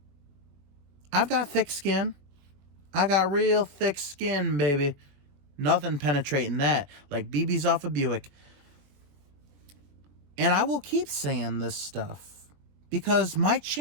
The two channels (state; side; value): late; left; 21 ms